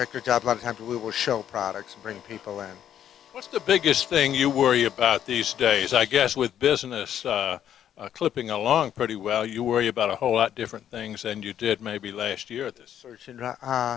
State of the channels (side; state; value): right; quieter; 10.2 dB